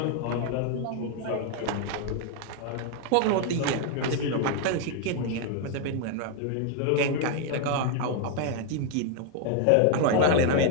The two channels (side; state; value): both; different; correlation 0.00